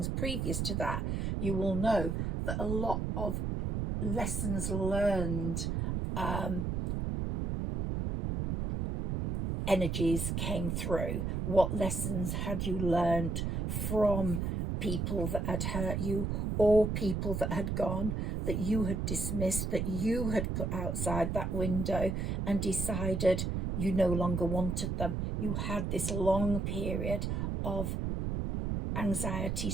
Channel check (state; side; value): noise; right; rumble, 1 dB below the sound